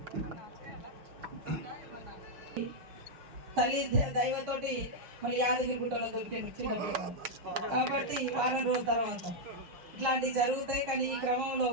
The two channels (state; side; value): late; left; 6.5 ms